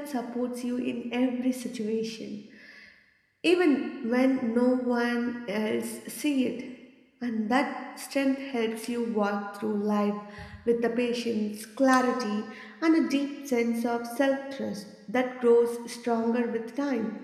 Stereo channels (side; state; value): both; identical; correlation 1.00